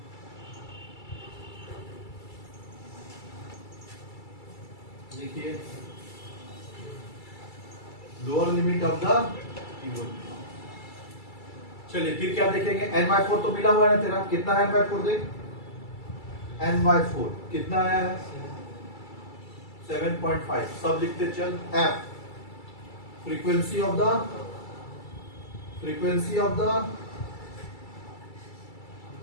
देखिए, lower limit of the Q1 class. चलिए फिर क्या देखेंगे? n/4 तो मिला हुआ है ना तेरा, कितना है n/4 देख। n/4 कितना आया है? 7.5। सब लिखते चल। f frequency of the frequency of the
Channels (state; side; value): late; right; 2.3 ms